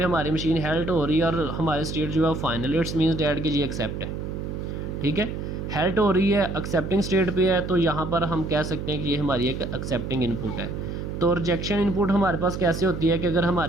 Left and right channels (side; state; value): right; noise; hum, 5 dB below the sound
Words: हमारी मशीन हेल्ट हो रही है और हमारी स्टेट जो है फाइनल, इट्स मीन्स डैट कि जी एक्सेप्ट है, ठीक है। हेल्ट हो रही है, एक्सेप्टिंग स्टेट पे है, तो यहाँ पर हम कह सकते हैं कि ये हमारी एक एक्सेप्टिंग इनपुट है। तो रिजेक्शन इनपुट हमारे पास कैसे होती है कि अगर